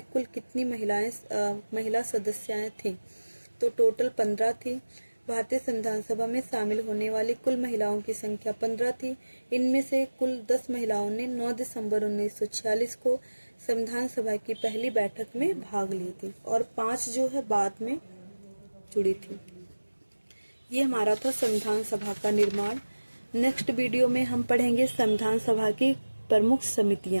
कुल कितनी महिला सदस्याएं थीं? तो टोटल 15 थी। भारतीय संविधान सभा में शामिल होने वाली कुल महिलाओं की संख्या 15 थी। इनमें से कुल 10 महिलाओं ने 9 दिसंबर 1946 को संविधान सभा की पहली बैठक में भाग ली थी और 5 जो है बाद में जुड़ी थी। ये हमारा था संविधान सभा का निर्माण। नेक्स्ट वीडियो में हम पढ़ेंगे संविधान सभा की प्रमुख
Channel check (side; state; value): both; inverted; correlation -1.00